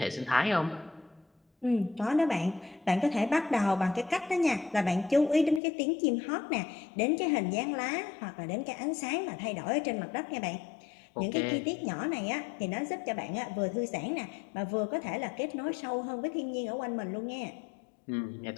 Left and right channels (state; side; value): drops out; right; at 5.6 s